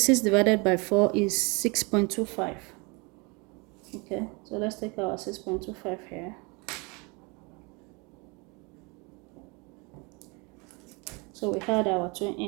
divided by 4 is 6.25. Okay, so let's take our 6.25 here. So we had our 2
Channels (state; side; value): quieter; left; 29.2 dB